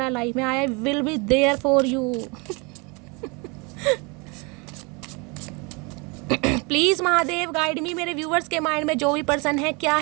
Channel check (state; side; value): quieter; left; 29.8 dB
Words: है लाइफ में। I will be there for you. Please Mahadev guide me, मेरे व्यूवर्स के माइंड में जो भी पर्सन है क्या